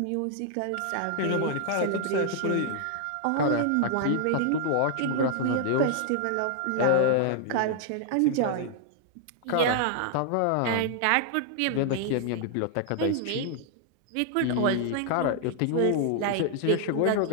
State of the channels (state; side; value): different; both; correlation -0.01